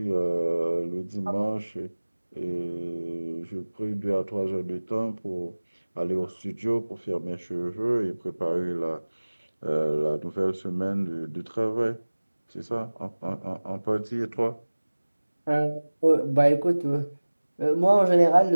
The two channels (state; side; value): inverted; both; correlation -1.00